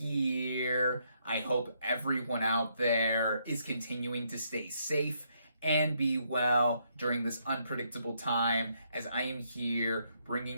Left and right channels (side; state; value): both; inverted; correlation -0.74